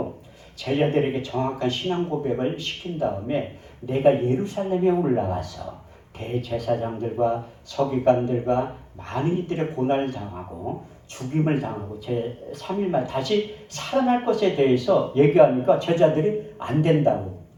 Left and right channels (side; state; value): both; identical; correlation 1.00